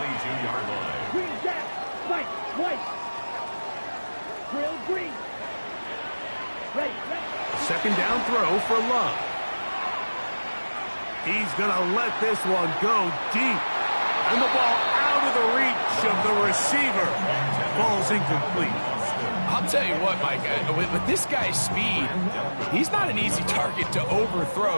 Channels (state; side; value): inverted; both; correlation -1.00